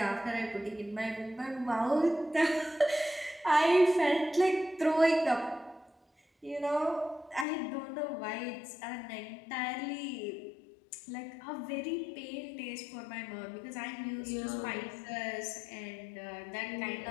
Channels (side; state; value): right; drops out; at 7.5 s